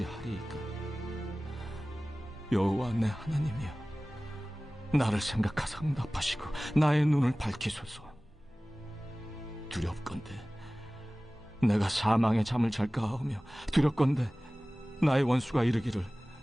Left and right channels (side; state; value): both; normal; correlation 0.98